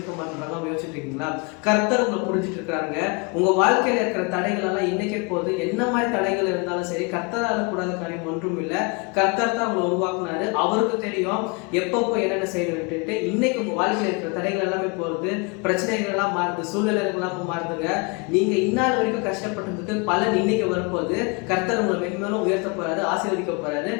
மாட்டேன்றாங்க. யோசிச்சுட்டு இருக்கீங்களா? கர்த்தர் உங்களை புரிஞ்சுட்டு இருக்காங்க. உங்க வாழ்க்கையில இருக்கிற தடைகள் எல்லாம் இன்னைக்கே போது, என்ன மாதிரி தடைகள் இருந்தாலும் சரி, கர்த்தரால கூடாத காரியம் ஒன்றும் இல்லை. கர்த்தர் தான் உங்களை உருவாக்குனாரு. அவருக்கு தெரியும் எப்பப்போ என்னென்ன செய்யணும் விட்டுட்டு. இன்னைக்கு உங்க வாழ்க்கையில இருக்கிற தடைகள் எல்லாமே போறது, பிரச்சனைகள் எல்லாம் மாறுது, சூழ்நிலைகள் எல்லாம் மாறுதுங்க. நீங்க இந்நாள் வரைக்கும் கஷ்டப்பட்டதுக்கு பலன் இன்னைக்கு வரும்போது கர்த்தர் உங்களை மென்மேலும் உயர்த்த போறாரு, ஆசீர்வதிக்க போறாரு.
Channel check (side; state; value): right; quieter; 30.4 dB